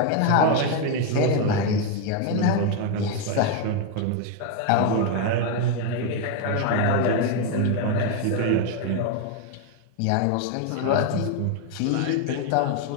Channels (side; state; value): both; different; correlation 0.01